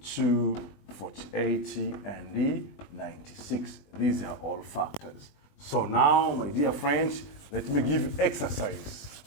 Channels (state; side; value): late; right; 20 ms